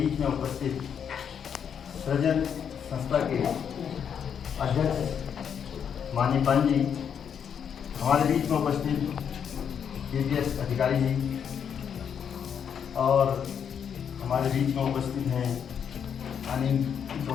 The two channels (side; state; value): right; quieter; 7.8 dB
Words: में उपस्थित सृजन संस्था के अध्यक्ष माननीय पंत जी, हमारे बीच में उपस्थित केपीएस अधिकारी जी और हमारे बीच में उपस्थित हैं अनिल